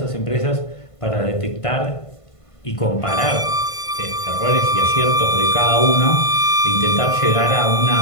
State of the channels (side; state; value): right; late; 1.5 ms